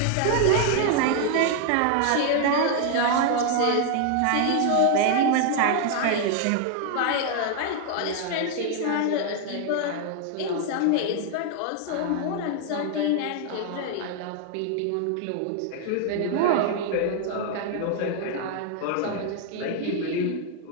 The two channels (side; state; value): both; different; correlation 0.00